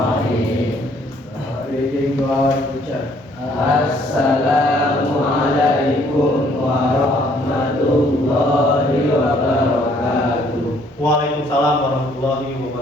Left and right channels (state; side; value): normal; both; correlation 0.63